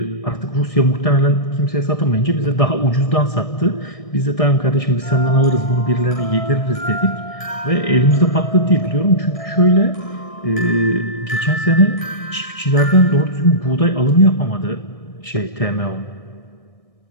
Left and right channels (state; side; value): late; right; 1.6 ms